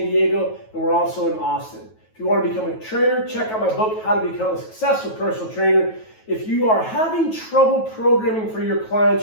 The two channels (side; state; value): right; late; 9.2 ms